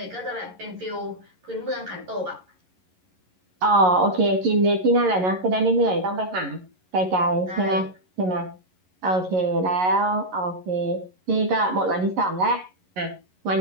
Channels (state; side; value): late; left; 11 ms